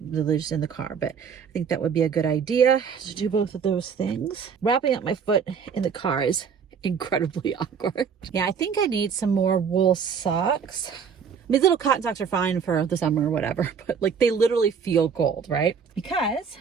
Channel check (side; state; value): left; quieter; 6.5 dB